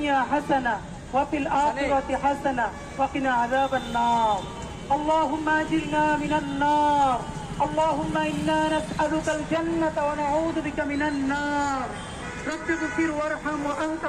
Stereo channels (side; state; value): both; identical; correlation 1.00